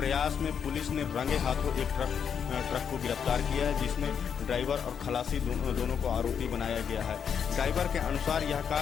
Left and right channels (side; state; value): right; quieter; 7.4 dB